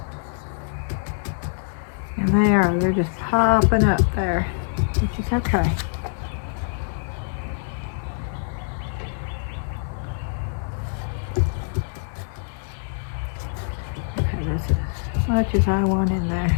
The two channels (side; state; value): right; silent; 62 dB below the other